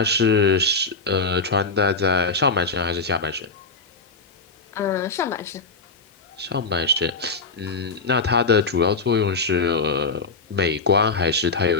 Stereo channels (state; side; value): quieter; right; 3.8 dB